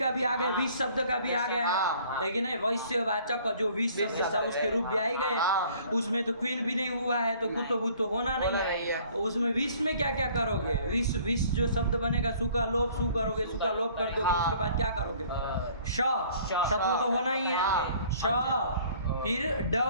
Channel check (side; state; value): both; inverted; correlation -0.55